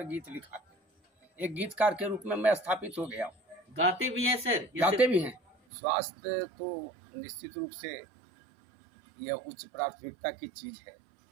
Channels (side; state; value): left; drops out; at 5.6 s